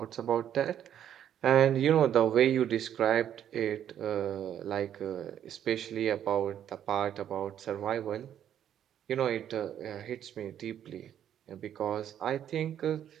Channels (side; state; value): left; quieter; 10.1 dB